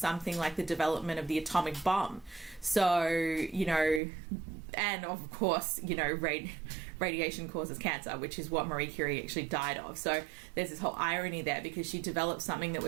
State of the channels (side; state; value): left; drops out; at 4.0 s